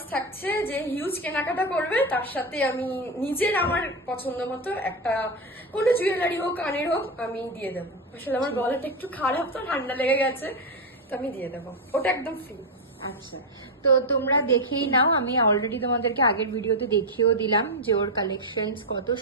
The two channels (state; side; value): normal; both; correlation 0.08